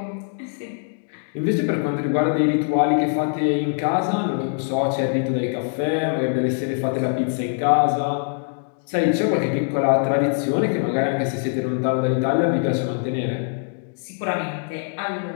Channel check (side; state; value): right; silent; 60 dB below the other